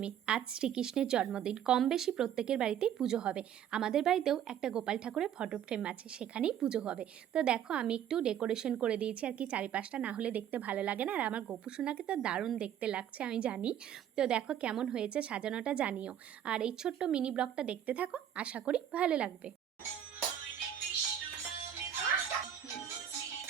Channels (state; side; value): quieter; left; 9.9 dB